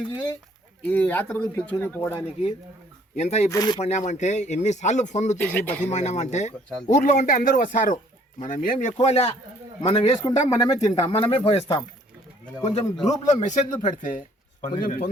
ఈ యాత్రకు పిలుచుకుని పోవడానికి ఎంత ఇబ్బంది పడినామంటే ఎన్నిసార్లు ఫోన్లు చేసి బతిమాడినామంటే ఊర్లో ఉంటే అందరూ వస్తారు. మనం ఏం ఎక్కువలే, మనం వేసుకుంటాం, మనమే తింటాం, మనమే పోయిస్తాం. కొంచెం గ్రూప్లో మెసేజ్లు పెడితే కొంచెం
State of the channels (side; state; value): both; normal; correlation 0.60